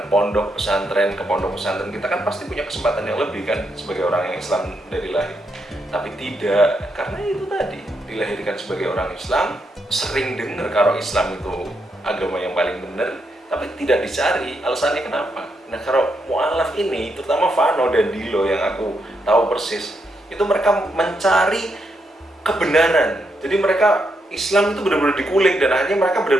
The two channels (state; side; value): normal; both; correlation 0.80